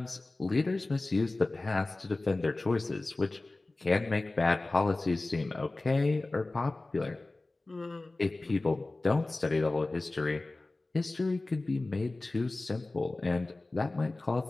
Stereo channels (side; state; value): right; quieter; 3.0 dB